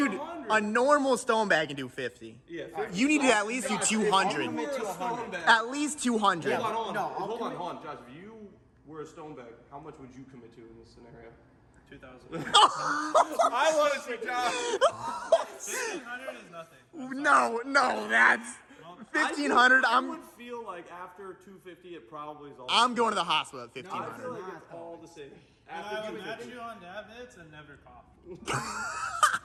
a normal stone bag can do 50. Yeah, You need to at least do 200. Commit to 100. At least 200. Hold on, hold on. No, I'll hold commit- on, Josh. If you were a stone bag, how much would you commit to in this scenario? 2,000. I want to see Josh. 1,500 is nothing. No, that's 1,500. I would feel like after 250, it probably is all. I'm going to the hospital at I feel 1,500. like it's all the same. And After I would 250. chew on dab hits and never cough.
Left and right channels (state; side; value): identical; both; correlation 1.00